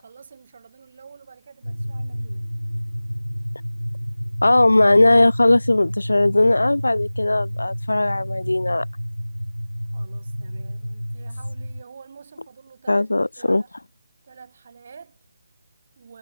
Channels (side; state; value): both; inverted; correlation -1.00